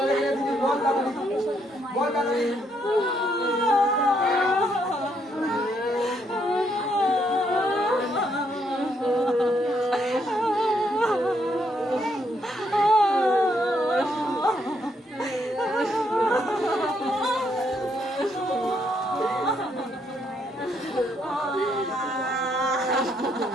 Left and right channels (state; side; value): normal; both; correlation 0.74